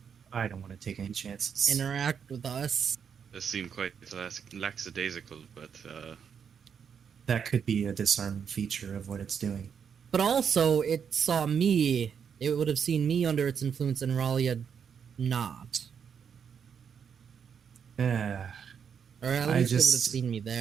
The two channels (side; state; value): left; quieter; 7.2 dB